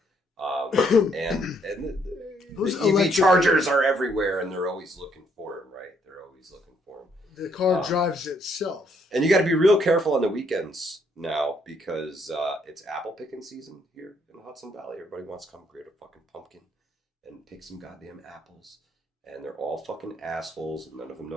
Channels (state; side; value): normal; both; correlation 0.70